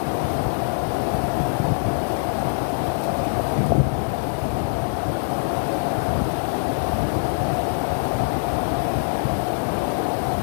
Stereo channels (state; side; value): silent; right; 59 dB below the other